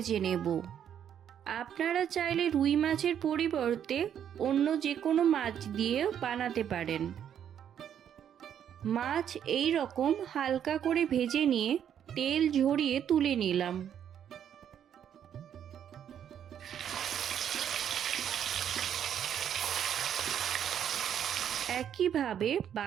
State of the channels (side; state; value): left; quieter; 9.3 dB